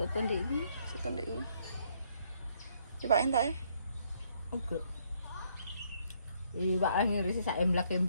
ndek iki. Soto ndek iki. Coba entak e. Oke. Pak ngirisi sak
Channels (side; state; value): both; inverted; correlation -0.69